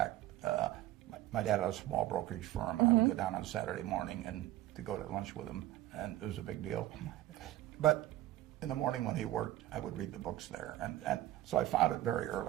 my dad had a small brokerage firm, and I would go down on Saturday morning and to go to lunch with him, and it was a big deal. But in the morning when he worked, I would read the books there, and so I found it very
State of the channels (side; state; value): left; quieter; 15.0 dB